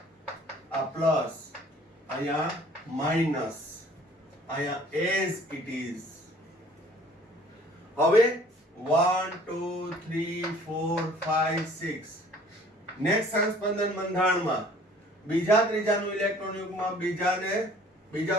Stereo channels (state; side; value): normal; both; correlation 0.53